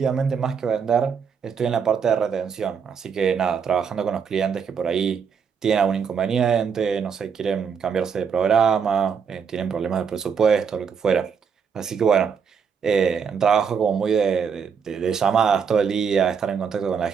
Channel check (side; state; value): left; quieter; 6.6 dB